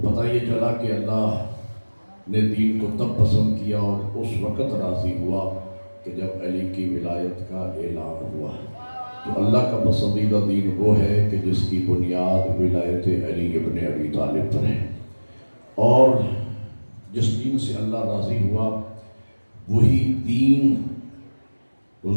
یہ چلا کہ اللہ نے دین کو تب پسند کیا اور اس وقت راضی ہوا کہ جب علی کی ولایت کا اعلان ہوا. تو اللہ کا پسندیدہ دین وہ ہے کہ جس کی بنیاد ولایت علی ابن ابی طالب پر ہے، اور جس دین سے اللہ راضی ہوا وہی دین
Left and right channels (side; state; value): both; inverted; correlation -1.00